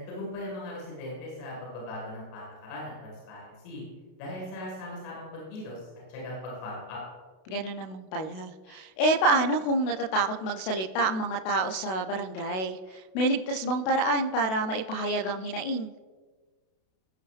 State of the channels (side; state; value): right; late; 32 ms